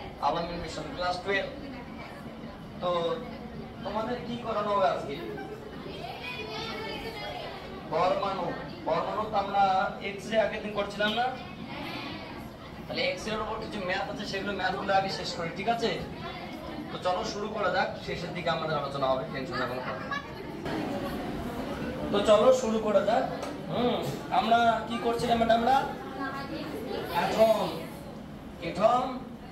আলামিন মিশন ক্লাস 12। তো তোমাদের কি করানো হবে আজকে? পরমাণু। পরমাণু তো আমরা এক্স রে আগের দিন করছিলাম না? তাহলে এক্স রে এর উপর কিছু ম্যাথ আছে, সেগুলো ম্যাথগুলো আগে শেষ করি, ঠিক আছে? তো চলো শুরু করা যাক, শেষের দিকে আমাদের আলোচনা হবে, টেনশন না কোনো কথা। তো চলো শুরু করা যাক। আমরা কি করছিলাম ম্যাডামরা? অ্যাটম। অ্যাটম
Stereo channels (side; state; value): both; identical; correlation 1.00